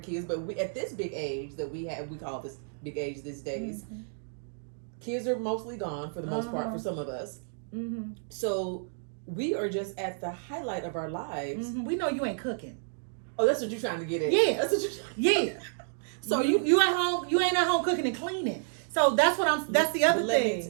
kids, but at this big age that we call this big age these days, kids are mostly gone for the most part for some of us. Mm-hmm. So we are just at the highlight of our lives. Mm-hmm. We know you ain't cooking. Oh, that's what you're trying to get at. Yeah. That's what you're Yeah. So you at home, you ain't at home cooking and cleaning. So that's the other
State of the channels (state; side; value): silent; left; digital silence